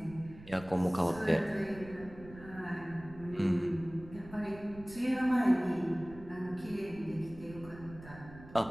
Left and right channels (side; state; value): right; noise; rumble, 17 dB below the sound